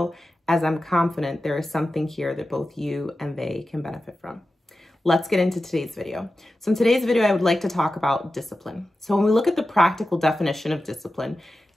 as I'm confident there is something here that both you and they can benefit from. Let's get into today's video. So in today's video, I would like to talk about discipline. So when we look at the practical definition of discipline,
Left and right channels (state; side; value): normal; both; correlation 0.93